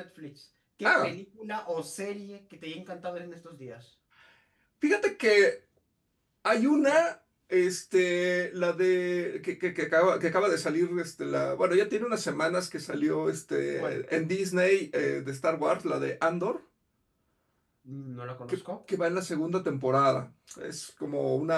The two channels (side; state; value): both; identical; correlation 1.00